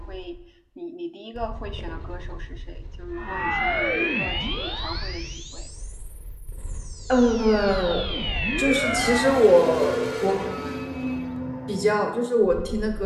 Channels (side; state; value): both; identical; correlation 1.00